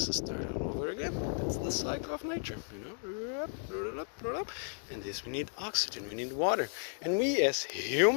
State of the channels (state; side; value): silent; right; 55 dB below the other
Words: starts all over again. That's the cycle of nature, you know. And this, we need oxygen, we need water, and we as